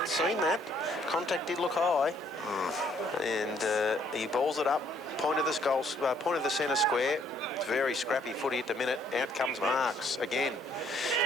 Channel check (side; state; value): both; normal; correlation 0.66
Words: seen that. Contact did look high. And he balls it up. Point of the centre square. It's very scrappy footy at the minute. Out comes Marks again.